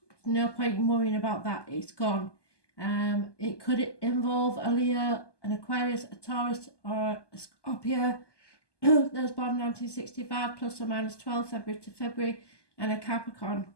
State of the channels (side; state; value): right; late; 1.2 ms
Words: No point in worrying about that. It's gone. It could involve a Leo, an Aquarius, a Taurus, or a Scorpio. Those born 1965 plus or minus 12 February to February, and a Capricorn.